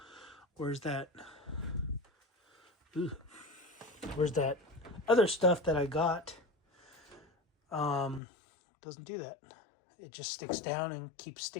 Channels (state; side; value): drops out; right; at 8.2 s